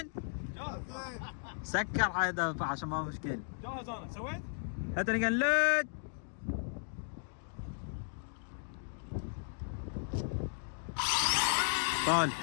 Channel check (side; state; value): right; silent; digital silence